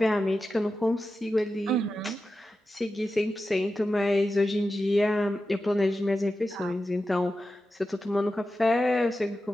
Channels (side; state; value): both; normal; correlation 0.92